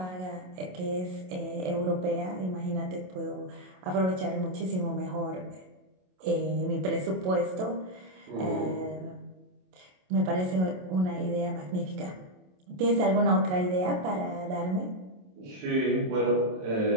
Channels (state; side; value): late; left; 27 ms